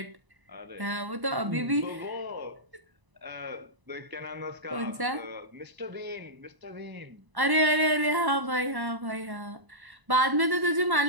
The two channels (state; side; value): late; left; 1.1 ms